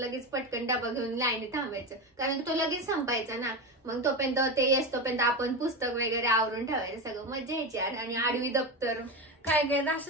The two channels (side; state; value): both; normal; correlation 0.18